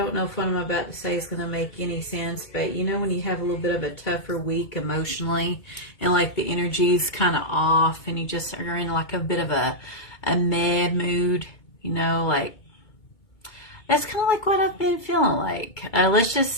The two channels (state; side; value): late; right; 2.2 ms